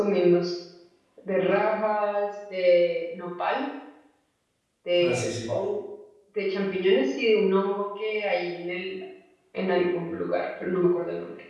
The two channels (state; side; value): identical; both; correlation 1.00